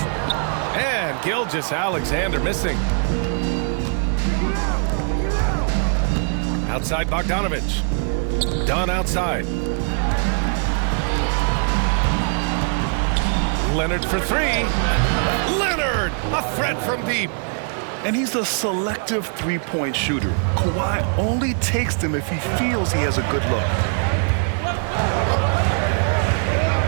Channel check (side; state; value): left; silent; 55 dB below the other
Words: And Gilgeous-Alexander missing. Outside Bogdanovich. Dunn outside. Leonard for 3. Leonard! A threat from deep. And he's a selective three-point shooter. Kawhi only takes them if he feels he has a good look.